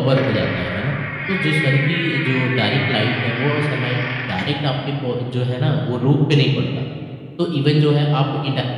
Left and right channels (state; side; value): identical; both; correlation 1.00